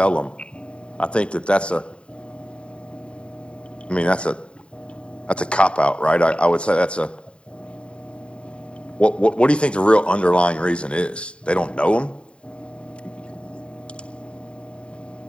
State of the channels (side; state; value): right; late; 0.055 ms